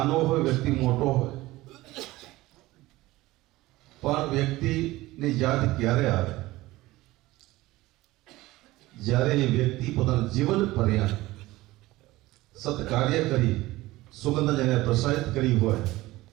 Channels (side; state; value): left; quieter; 18.5 dB